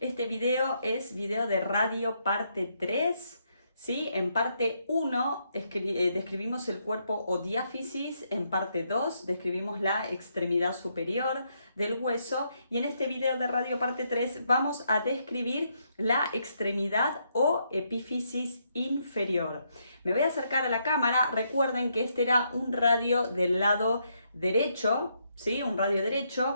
video es video de radio parte 3, ¿sí? En parte 1 describimos el cuerpo o diáfisis, en parte 2 describimos la extremidad superior del hueso y en este video de radio parte 3 vamos a describir la extremidad o epífisis inferior. Me voy a acercar a la cámara. Recuerden que este era un radio del lado derecho, ¿sí? Un radio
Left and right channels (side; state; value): both; inverted; correlation -0.76